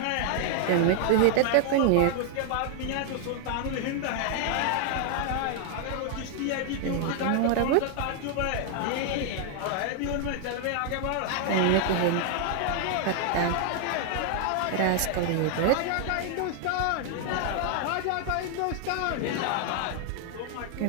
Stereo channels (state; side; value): different; both; correlation 0.00